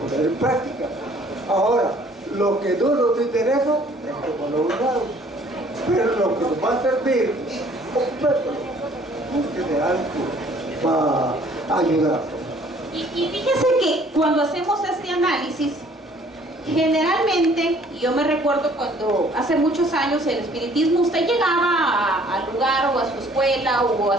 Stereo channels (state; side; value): normal; both; correlation 0.57